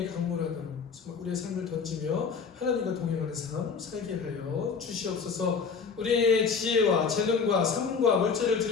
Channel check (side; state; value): right; quieter; 5.6 dB